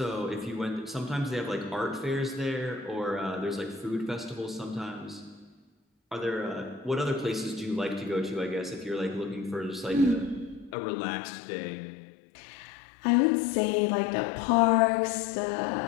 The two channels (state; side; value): drops out; right; at 10.8 s